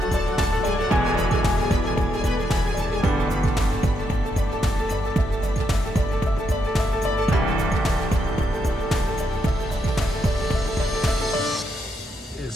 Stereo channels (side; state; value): both; normal; correlation 0.80